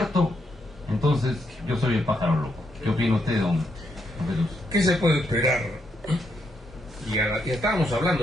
entonces yo soy el pájaro loco. ¿Qué opina usted, don Jesús? ¿Qué se puede esperar? Y estábamos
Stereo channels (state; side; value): normal; both; correlation 0.78